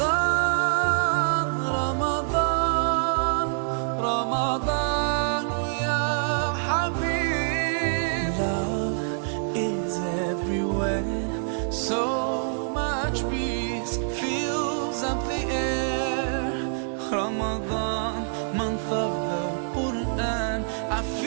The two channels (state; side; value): silent; left; 59 dB below the other